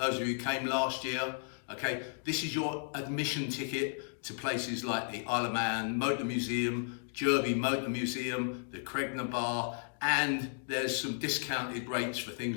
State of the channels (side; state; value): right; silent; digital silence